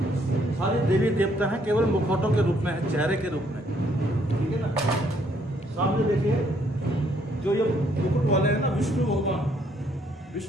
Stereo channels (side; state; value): both; normal; correlation 0.68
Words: सारे देवी देवता हैं, केवल मुखौटों के रूप में है, चेहरे के रूप में, ठीक है ना। सामने देखिए जो ये मुकुट वाले हैं ना,